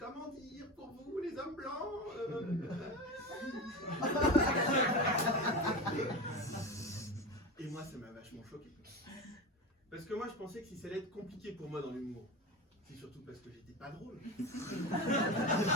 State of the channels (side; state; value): both; normal; correlation 0.24